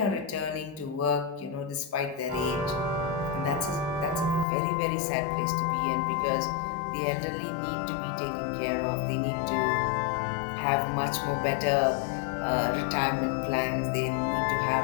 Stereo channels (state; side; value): drops out; right; at 4.5 s